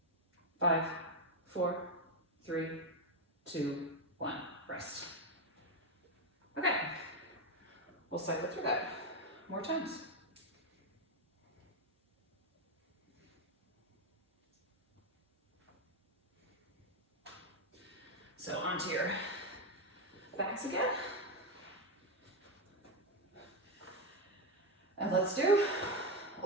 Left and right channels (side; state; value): both; normal; correlation 0.08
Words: 5, 4, 3, 2, 1. Rest. Okay. We'll cycle through that more times. So onto your backs again. And let's do